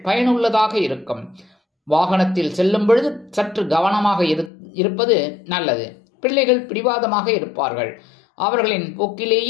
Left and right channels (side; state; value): right; drops out; at 4.5 s